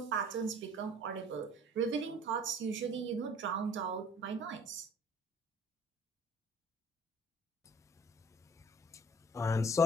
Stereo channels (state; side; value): normal; both; correlation 0.51